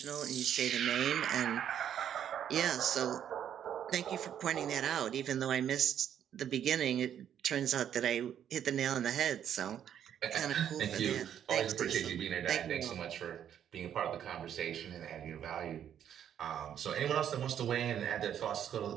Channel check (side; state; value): left; quieter; 9.6 dB